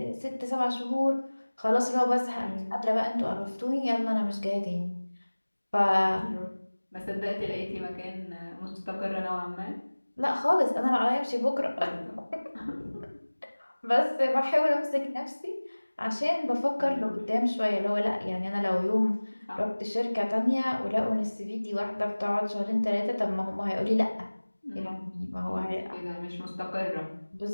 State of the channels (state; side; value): inverted; both; correlation -1.00